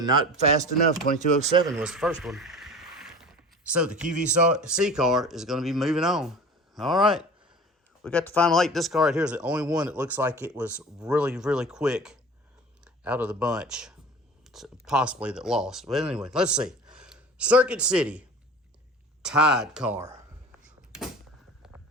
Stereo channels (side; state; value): both; normal; correlation 0.39